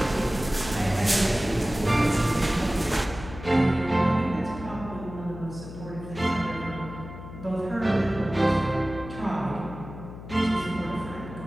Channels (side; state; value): left; noise; hum, 12 dB below the sound